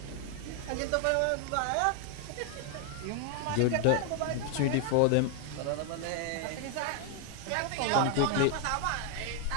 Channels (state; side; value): different; both; correlation 0.00